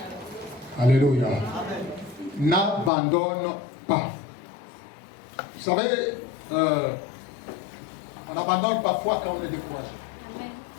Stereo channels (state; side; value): drops out; right; at 2.9 s